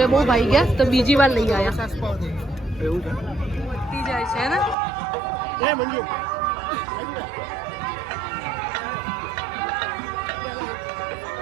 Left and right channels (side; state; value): left; drops out; at 4.8 s